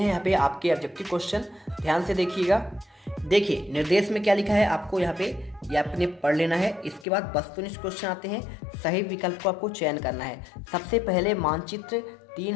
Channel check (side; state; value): right; drops out; at 7.1 s